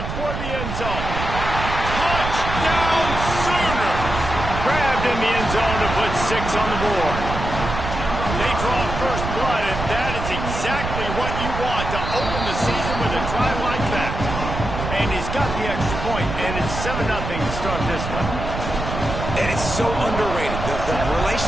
toward the end zone. Touchdown Sooners! Grabbed in the end zone to put 6 on the board. They draw first blood, and that is exactly what you want to open the season with a drive like that. And he's got the extra point, and it's 7-0 to start this one. And it's so underrated. The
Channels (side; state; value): right; noise; rumble, 5 dB below the sound